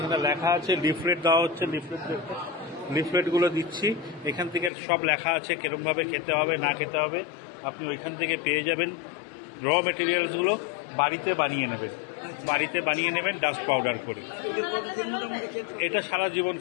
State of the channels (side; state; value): right; drops out; at 4.7 s